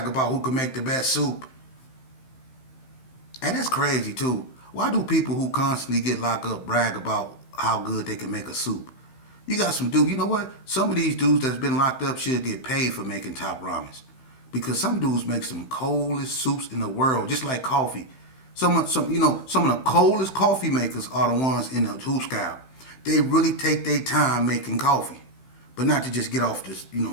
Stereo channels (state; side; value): late; right; 15 ms